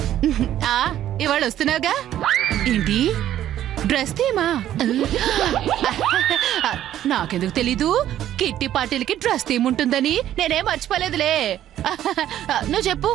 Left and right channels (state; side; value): quieter; left; 11.9 dB